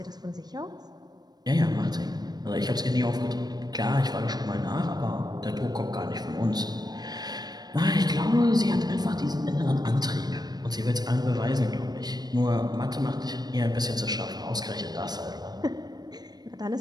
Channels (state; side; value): late; left; 0.19 ms